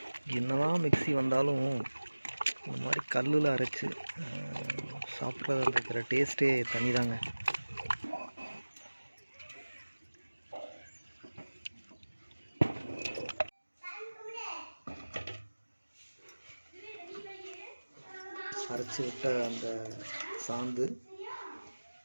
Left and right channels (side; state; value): both; inverted; correlation -1.00